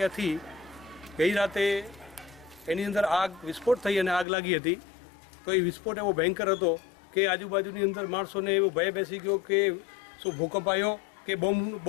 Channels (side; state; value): right; drops out; at 4.2 s